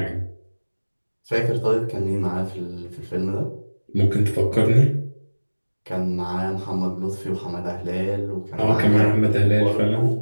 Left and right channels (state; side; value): inverted; both; correlation -1.00